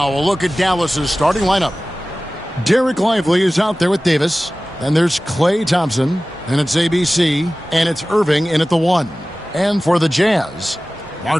a look at Dallas's starting lineup. Derek Lively is out there with Davis. Then there's Klay Thompson. And it's ABC. And it's Irving in at the 1. And for the Jazz,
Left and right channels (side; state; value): both; normal; correlation 0.97